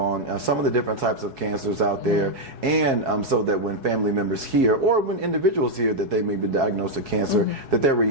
some of the different types of cancers out there, and so that when family members hear or when individuals hear that they may be diagnosed with cancer, that their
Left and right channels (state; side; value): late; left; 4.7 ms